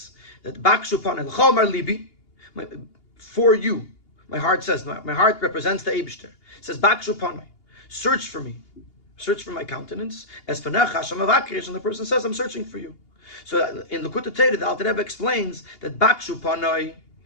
that bakshu panoi l'chomar libi. For you, my heart says, my heart represents the Eibishter. It says, Bakshu panai, search for me, search for my countenance. As panach Hashem avakish, and the person says, I'm searching for you. So in the Gourarie, the Alter Rebbe explains that Bakshu panai,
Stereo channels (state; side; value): late; right; 2.8 ms